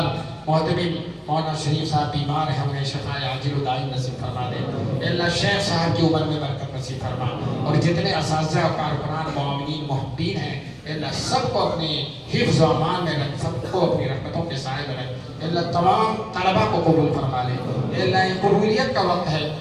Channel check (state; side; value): identical; both; correlation 1.00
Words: محتمم مولانا شریف صاحب بیمار ہیں انہیں شفاء عاجل و دائم نصیب فرما دے. اللہ شیخ صاحب کی عمر میں برکت نصیب فرما. اور جتنے اساتذہ کارکنان معاونین محبین ہیں اللہ سب کو اپنے حفظ و امان میں رکھ. سب کو اپنی رحمتوں کے سائے میں رکھ. اللہ تمام طلبہ کو قبول فرما لے. اللہ یہ قبولیت کا وقت ہے.